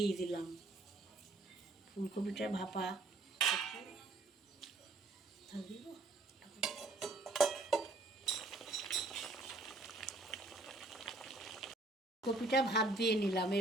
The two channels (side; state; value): left; quieter; 3.0 dB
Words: দিলাম। ফুলকপিটা ভাপা কপিটা ভাপ দিয়ে নিলাম,